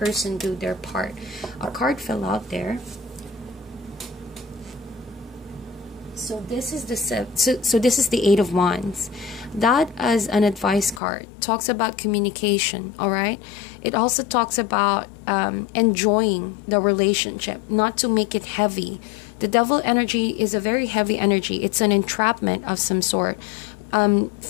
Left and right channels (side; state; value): right; drops out; at 11.0 s